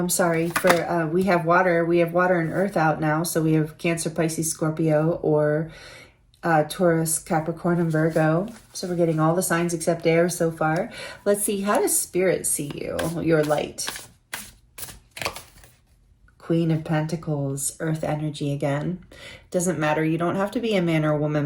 sorry. For we have water. We have water and earth out now. So we have Cancer, Pisces, Scorpio, or Taurus, Capricorn, and Virgo. So we're getting all the signs except air so far. Let's see. How does Spirit see you, your light? Queen of Pentacles, earth energy again. Doesn't matter. You don't have to be a man or a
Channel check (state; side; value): identical; both; correlation 1.00